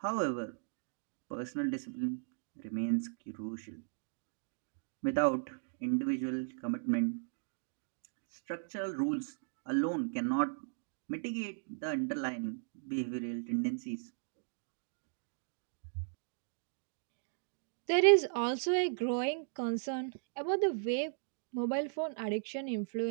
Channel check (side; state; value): left; silent; digital silence